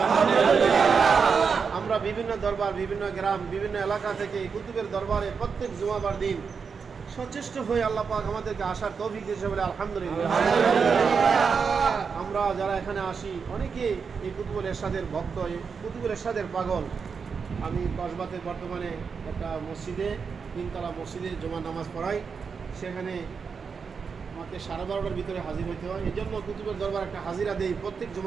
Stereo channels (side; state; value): left; quieter; 5.7 dB